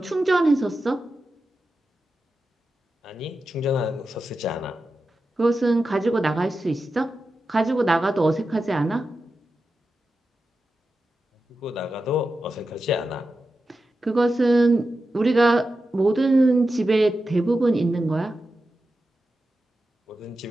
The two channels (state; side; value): normal; both; correlation 0.91